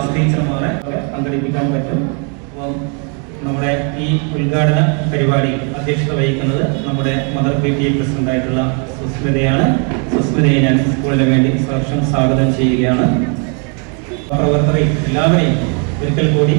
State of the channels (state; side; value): quieter; left; 38.6 dB